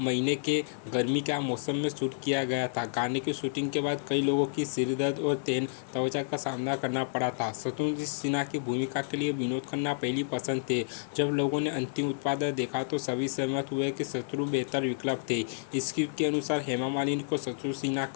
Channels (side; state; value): right; silent; 58 dB below the other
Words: महीने के गर्मी के मौसम में शूट किया गया था। गाने की शूटिंग के बाद कई लोगों की सिरदर्द और तेन त्वचा का सामना करना पड़ा था। शत्रुघ्न सिन्हा की भूमिका के लिए विनोद खन्ना पहली पसंद थे। जब लोगों ने अंतिम उत्पाद देखा तो सभी सहमत हुए कि शत्रु बेहतर विकल्प थे। स्क्रिप्ट के अनुसार हेमा मालिनी को शत्रुघ्न सिन्हा